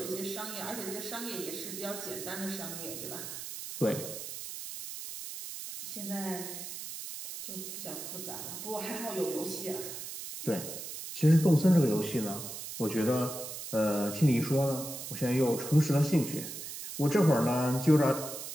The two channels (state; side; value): noise; right; hiss, 8 dB below the sound